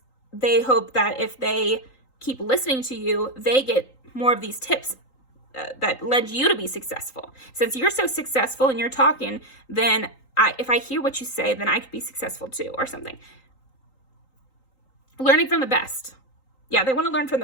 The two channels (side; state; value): right; late; 3.8 ms